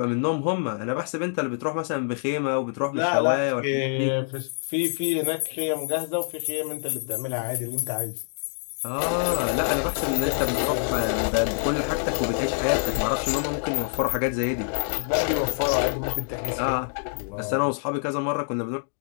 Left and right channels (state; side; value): silent; right; digital silence